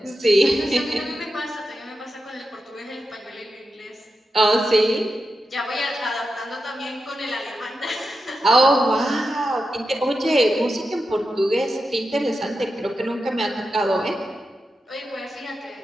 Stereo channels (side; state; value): both; normal; correlation 0.89